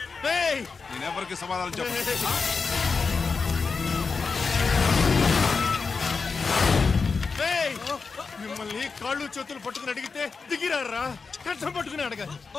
నేను ఎవరికి సమాధానం చెప్పను. మిమ్మల్ని కాళ్ళు చేతులు పట్టుకుని అడిగితే దిగిరారా? కష్టం పట్టుకుని అడగాలి.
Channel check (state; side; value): quieter; right; 4.8 dB